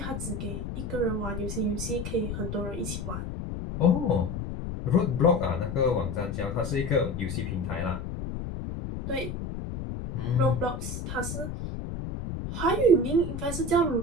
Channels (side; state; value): left; noise; rumble, 6 dB below the sound